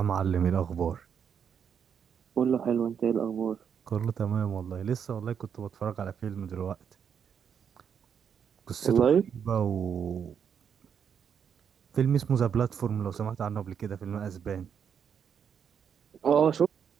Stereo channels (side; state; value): left; quieter; 7.6 dB